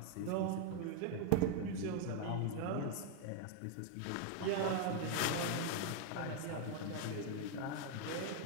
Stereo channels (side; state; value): both; different; correlation 0.00